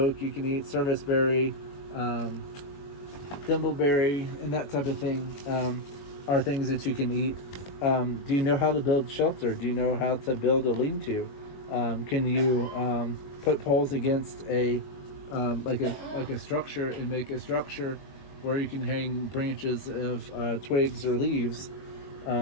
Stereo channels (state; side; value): late; right; 21 ms